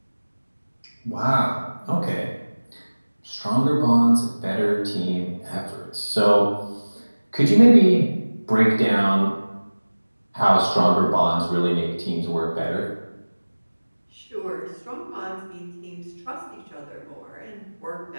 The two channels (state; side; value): inverted; both; correlation -1.00